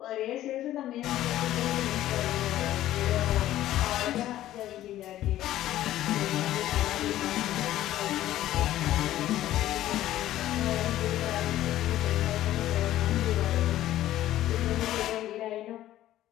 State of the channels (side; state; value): right; quieter; 13.7 dB